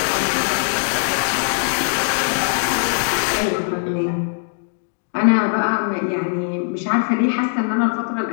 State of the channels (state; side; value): silent; right; digital silence